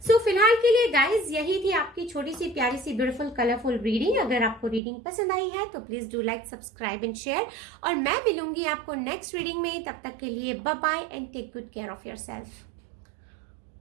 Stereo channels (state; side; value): drops out; left; at 4.8 s